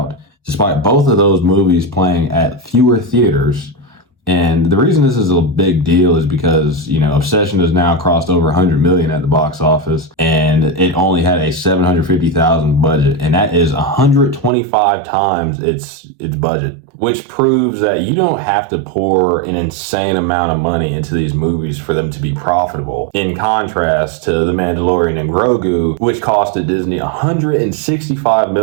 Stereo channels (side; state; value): left; drops out; at 14.5 s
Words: despite both of those movies playing at fewer theaters. And the reason this is a big deal is because, Obsession has now crossed over 100 million at the box office, and it only had a 750,000 budget, and that is 125 times its budget, which proves that you don't have to pour an insane amount of money into these movies for them to be profitable. In contrast to The Mandalorian and Grogu, which costed Disney $165